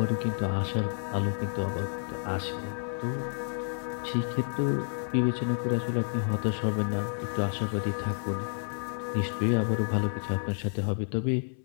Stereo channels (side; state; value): right; silent; 58 dB below the other